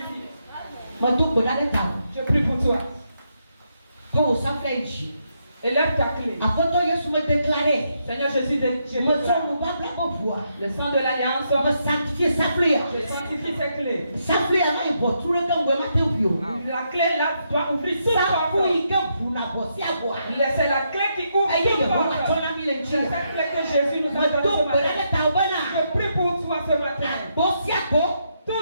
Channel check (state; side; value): inverted; both; correlation -0.79